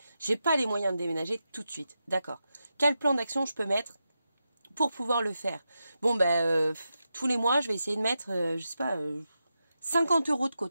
j'ai pas les moyens de déménager tout de suite. D'accord. Quel plan d'action je peux mettre pour pouvoir le faire? Bon ben, tous les mois, je vais essayer de mettre, je sais pas, 50 € de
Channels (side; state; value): both; inverted; correlation -0.88